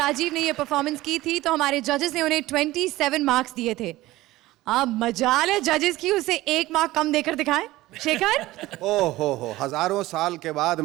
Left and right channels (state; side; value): quieter; left; 17.6 dB